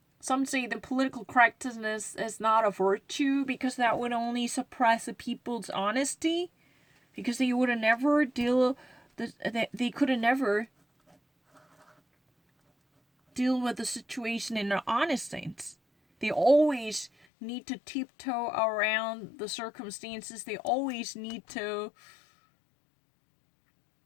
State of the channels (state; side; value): drops out; right; at 17.1 s